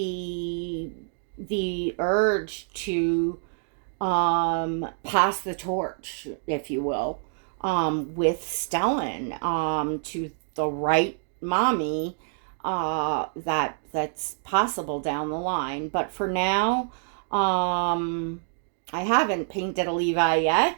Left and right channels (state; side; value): silent; left; digital silence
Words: urge to pass the torch, if you will, with Stellan, to the right mommy, that's possible down the line. But for now, I haven't painted a Levi